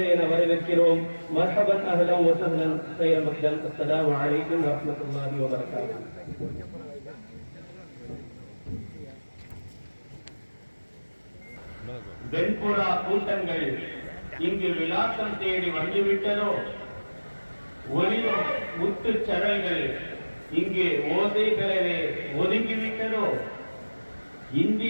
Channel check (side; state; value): both; inverted; correlation -1.00